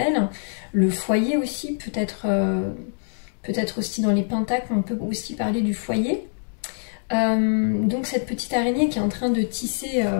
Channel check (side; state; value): right; silent; 62 dB below the other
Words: le foyer aussi, peut-être aussi dans les pentacles, on peut aussi parler du foyer. Donc cette petite araignée qui est en train de tisser